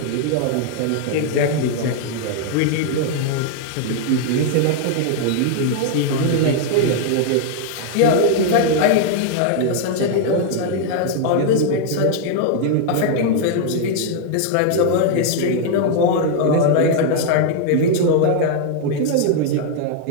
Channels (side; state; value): both; different; correlation 0.00